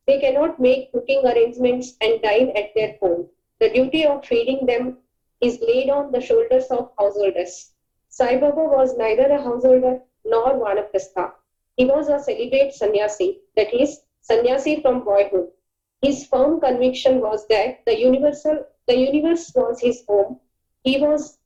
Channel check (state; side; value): identical; both; correlation 1.00